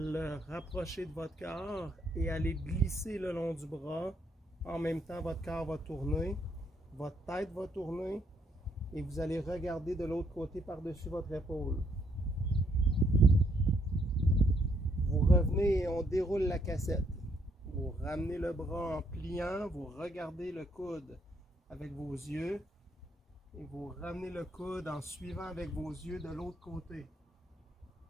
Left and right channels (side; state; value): both; normal; correlation 0.72